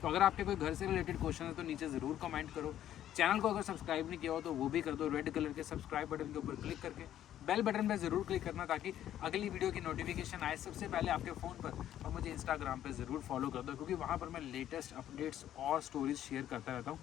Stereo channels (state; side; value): quieter; right; 11.6 dB